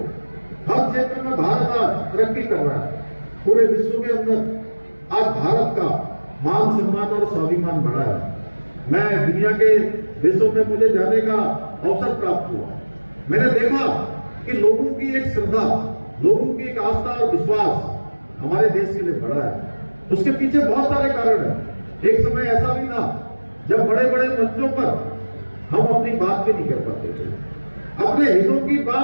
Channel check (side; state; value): both; inverted; correlation -1.00